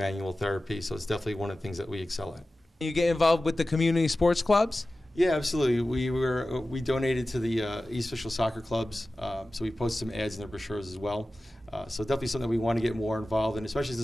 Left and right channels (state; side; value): normal; both; correlation 0.95